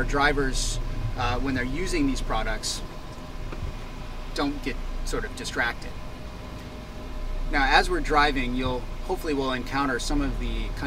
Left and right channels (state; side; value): identical; both; correlation 1.00